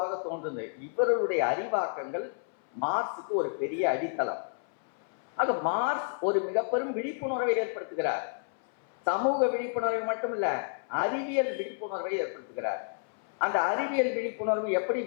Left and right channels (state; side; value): silent; right; 58 dB below the other